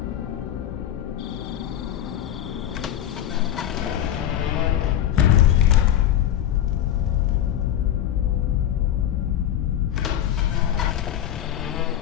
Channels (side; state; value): right; quieter; 11.2 dB